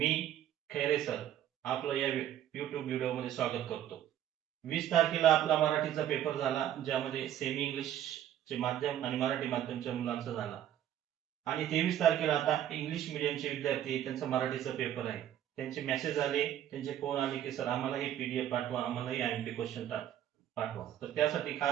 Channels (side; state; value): left; quieter; 11.2 dB